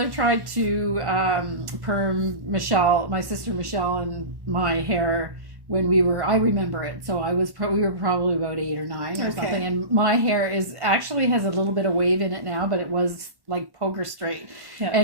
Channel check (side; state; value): left; late; 1.1 ms